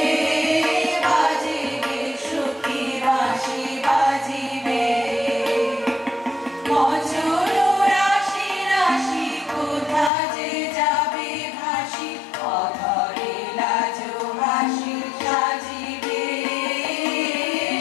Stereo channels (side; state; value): right; drops out; at 10.1 s